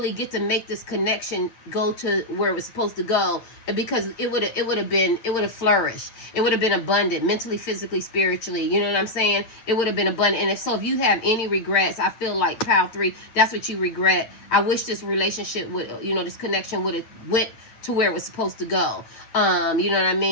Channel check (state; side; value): late; right; 8.9 ms